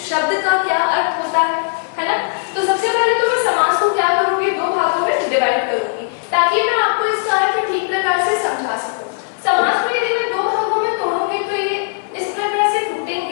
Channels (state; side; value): silent; right; 60 dB below the other